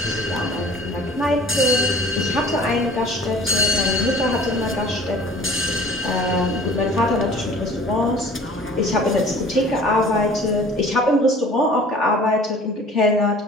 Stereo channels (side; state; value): both; normal; correlation 0.47